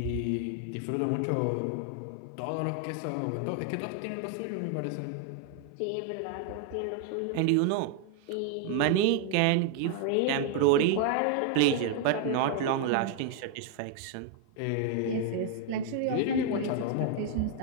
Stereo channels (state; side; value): different; both; correlation 0.00